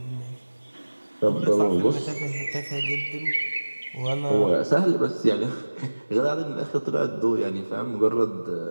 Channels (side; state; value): both; inverted; correlation -1.00